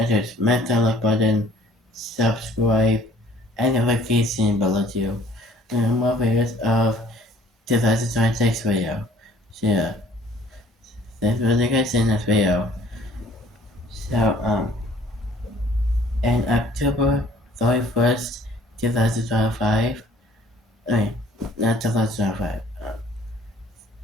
smash the like button, subscribe, and notification below you. And more videos of 2026 video. So yeah, thanks for the guys in this video. So in October 31st, 2025, I mean, not 2025,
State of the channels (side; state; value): both; normal; correlation 0.55